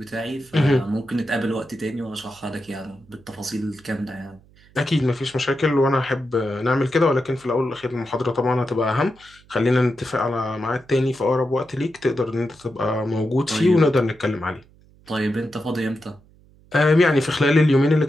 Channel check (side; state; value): right; noise; hum, 28 dB below the sound